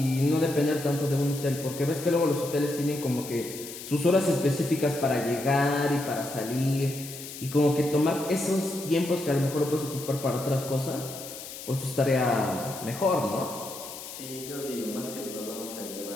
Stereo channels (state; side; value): noise; left; hiss, 12 dB below the sound